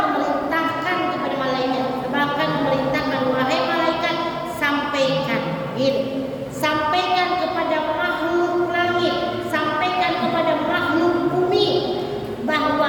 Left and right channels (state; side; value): identical; both; correlation 1.00